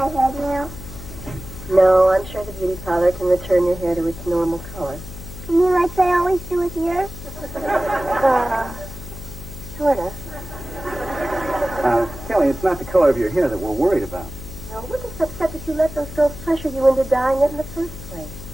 head now? No, I'm sure the beauty parlor can return your hair to its normal color. You mean like they always do with yours? Sort of. Kelly, it's not the color of your hair that we're worried about. No, we're just upset that you let those girls pressure you into dyeing it in the first place.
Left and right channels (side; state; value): left; noise; hum, 12 dB below the sound